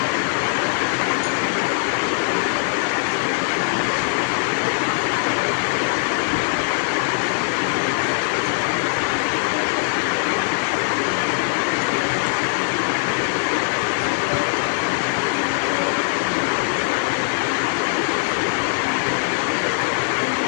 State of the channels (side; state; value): right; silent; digital silence